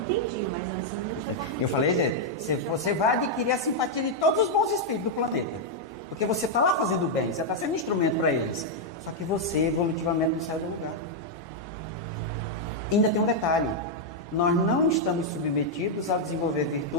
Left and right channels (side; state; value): both; normal; correlation -0.02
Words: mas antes eu não tinha... Eu falei, você vai adquirir a simpatia de todos os bons espíritos do planeta. Porque você está lá fazendo o bem, você está sendo instrumento para eles. Só que você, evolutivamente, não saiu do lugar. Ainda tem um detalhe. Nós não estamos submetidos a desenvolver